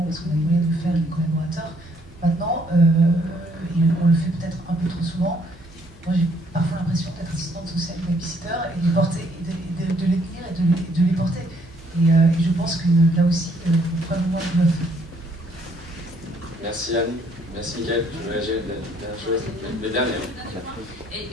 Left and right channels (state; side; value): normal; both; correlation 0.66